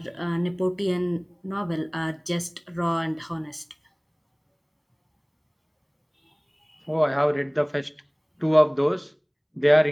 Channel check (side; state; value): both; identical; correlation 1.00